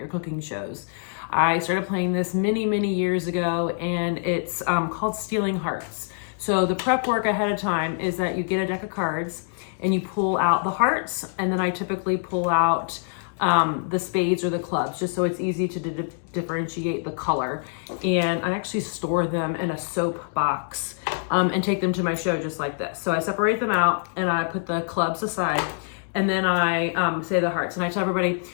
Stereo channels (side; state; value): right; silent; digital silence